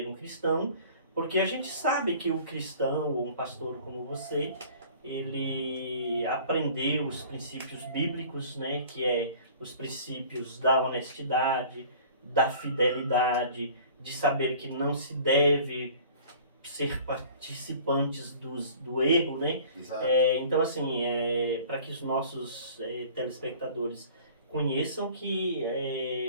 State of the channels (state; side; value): inverted; both; correlation -0.47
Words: um cristão, porque a gente sabe que o cristão, ou um pastor como você, ele aprendeu os princípios bíblicos, né, que é os princípios da honestidade, da fidelidade, de saber que não se deve ser participantes do erro, né? Então, assim, para que os nossos telespectadores conheçam que